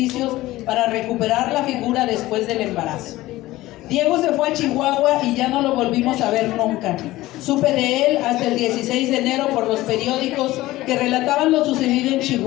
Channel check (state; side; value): quieter; right; 17.3 dB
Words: para recuperar la figura después del embarazo. Diego se fue a Chihuahua y ya no lo volvimos a ver nunca. Supe de él hasta el 16 de enero por los periódicos que relataban lo sucedido en